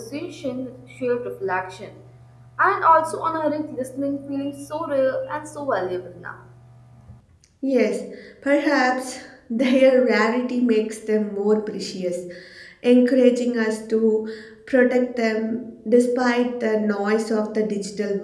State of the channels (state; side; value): identical; both; correlation 1.00